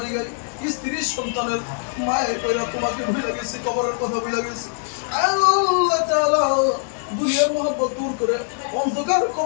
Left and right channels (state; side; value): silent; right; 63 dB below the other